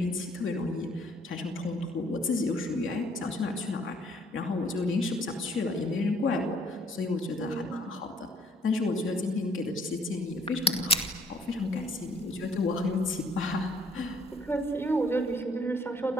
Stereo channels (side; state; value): both; normal; correlation 0.62